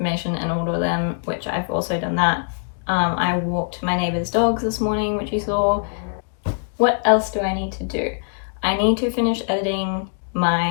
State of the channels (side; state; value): right; silent; digital silence